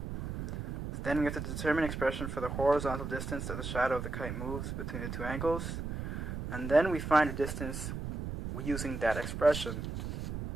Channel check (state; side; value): noise; right; rumble, 5 dB below the sound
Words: Then we have to determine expression for the horizontal distance that the shadow of the kite moves between the two angles. And then we find a distance using that expression.